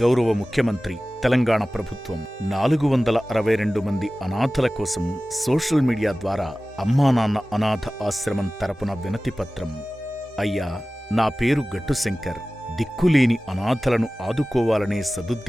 గౌరవ ముఖ్యమంత్రి, తెలంగాణ ప్రభుత్వం 462 మంది అనాథల కోసం సోషల్ మీడియా ద్వారా అమ్మానాన్న అనాథ ఆశ్రమం తరపున వినతిపత్రం. అయ్యా, నా పేరు గట్టు శంకర్. దిక్కులేని అనాథలను ఆదుకోవాలనే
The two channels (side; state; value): both; normal; correlation 0.97